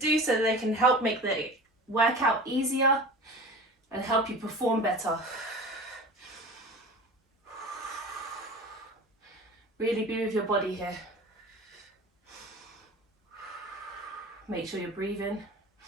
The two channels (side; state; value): both; normal; correlation 0.36